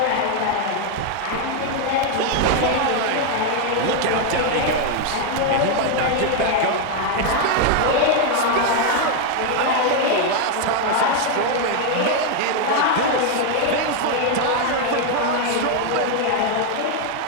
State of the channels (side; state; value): both; different; correlation 0.01